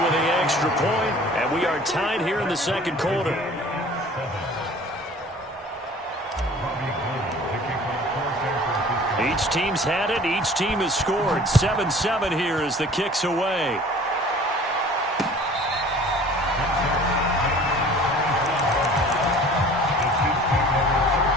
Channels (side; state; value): both; normal; correlation 0.47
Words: with the extra point, and we are tied here in the 2nd quarter. Each team's had it. Each team has scored. 7-7 here as the kick's away.